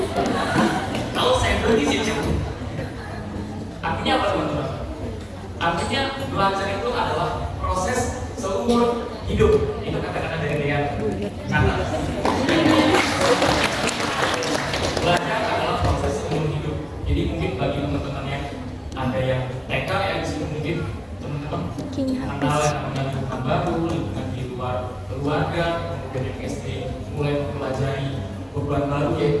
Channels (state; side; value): identical; both; correlation 1.00